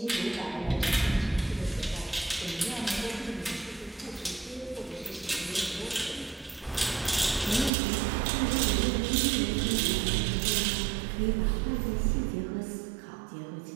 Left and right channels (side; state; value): left; drops out; at 7.7 s